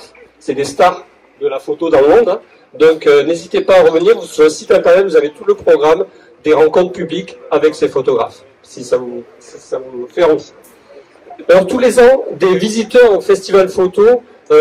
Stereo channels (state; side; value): identical; both; correlation 1.00